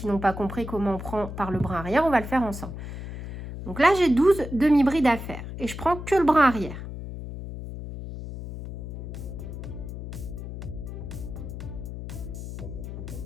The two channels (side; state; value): left; noise; hum, 8 dB below the sound